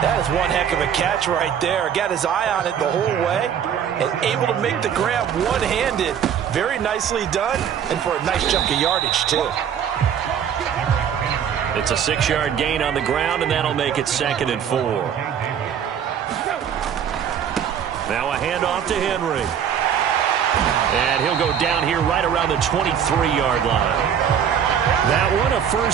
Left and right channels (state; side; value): quieter; left; 8.5 dB